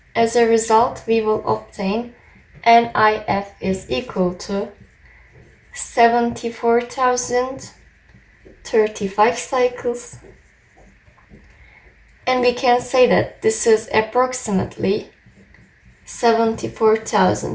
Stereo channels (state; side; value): identical; both; correlation 1.00